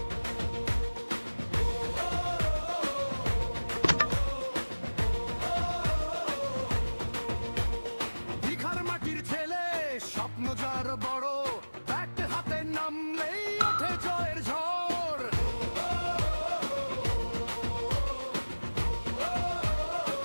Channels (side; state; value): both; inverted; correlation -1.00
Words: দীঘার মাটির ছেলে, স্বপ্ন যার বড়, ব্যাট হাতে নামলেই ওঠে জয়ের ঝড়।